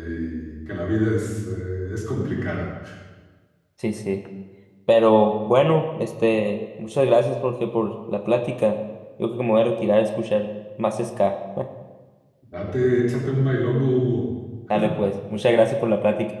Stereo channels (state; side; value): identical; both; correlation 1.00